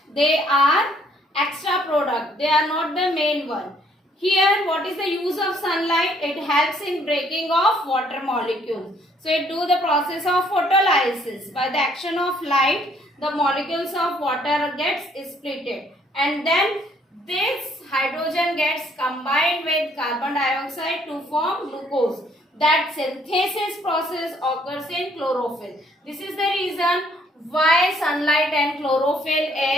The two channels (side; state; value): both; normal; correlation 0.64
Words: they are extra product. They are not the main one. Here, what is the use of sunlight? It helps in breaking of water molecules. So, it do the process of photolysis. By the action of light, the molecules of water gets splitted. And then this hydrogen gets combined with carbon dioxide to form glucose. That synthesis process occurs in chlorophyll. This is the reason why sunlight and chlorophyll